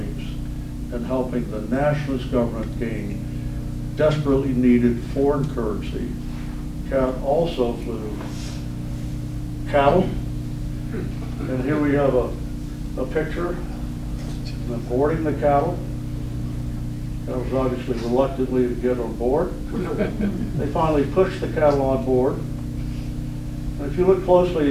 and helping the nationalist government gain desperately needed foreign currency. CAT also flew cattle, and here we have a picture of them boarding the cattle. That was obviously reluctantly to get on board. They finally pushed the cattle on board. And if you look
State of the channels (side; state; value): both; identical; correlation 1.00